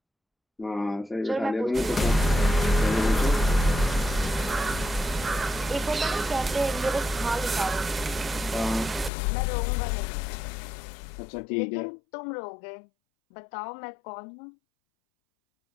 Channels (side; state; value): right; drops out; at 9.1 s